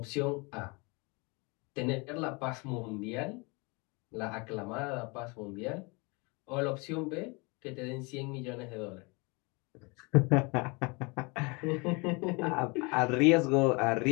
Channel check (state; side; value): quieter; right; 28.7 dB